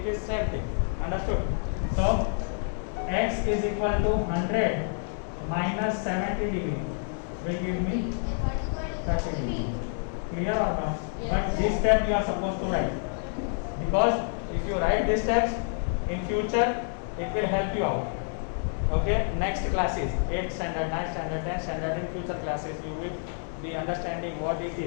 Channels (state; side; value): silent; right; digital silence